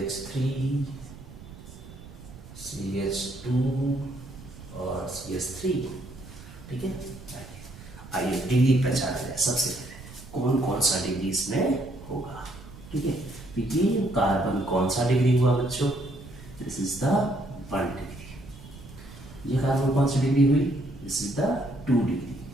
CH2 और CH3। ठीक है, आइए डिग्री पहचान लें। सबसे पहले कौन कौन सा डिग्री इसमें होगा। ठीक है, तो ये कार्बन कौन सा डिग्री हुआ बच्चों? This is the 1 degree. ये कार्बन कौन सी डिग्री हुई? दिस इज द 2 डिग्री,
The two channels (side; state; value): right; noise; rumble, 17 dB below the sound